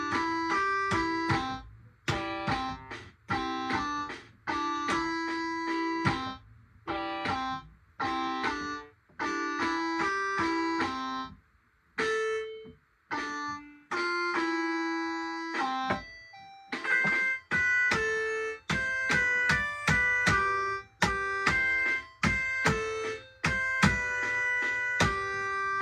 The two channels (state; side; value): identical; both; correlation 1.00